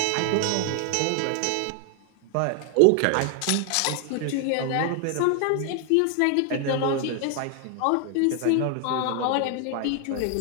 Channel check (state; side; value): different; both; correlation 0.00